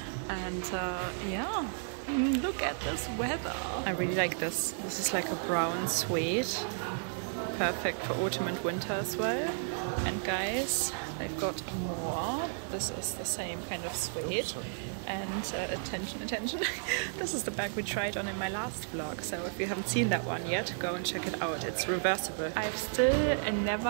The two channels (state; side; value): silent; left; 56 dB below the other